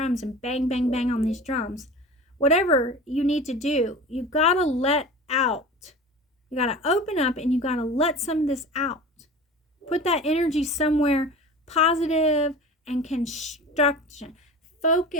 and bang, bang, bang on these drums. Whatever you need to do, you gotta let out. You gotta open up and you gotta let some of this out. Put that energy somewhere positive and construction.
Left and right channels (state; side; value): normal; both; correlation 0.35